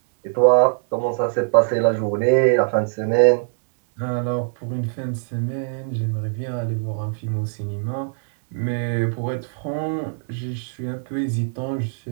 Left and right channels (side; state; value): left; silent; 64 dB below the other